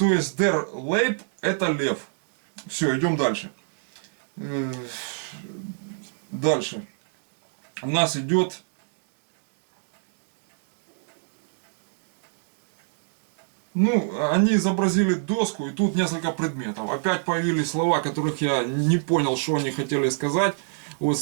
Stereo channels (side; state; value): left; silent; digital silence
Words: есть der Leib это лев. Все, идем дальше. Дальше. У нас идет они изобразили доску, и тут несколько предметов. Опять появились слова, которых я не понял, что они хотели сказать. Вот